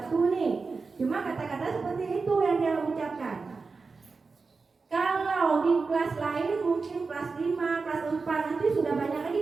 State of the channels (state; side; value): quieter; left; 4.4 dB